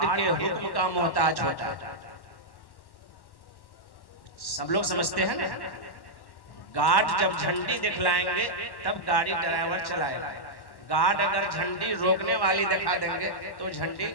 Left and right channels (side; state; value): right; late; 1.1 ms